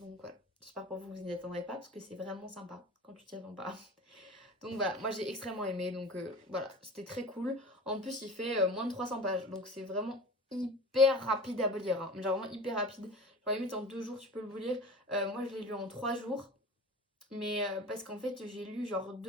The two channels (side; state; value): both; normal; correlation 0.36